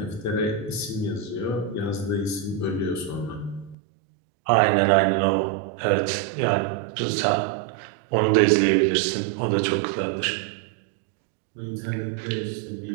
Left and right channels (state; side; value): drops out; left; at 3.8 s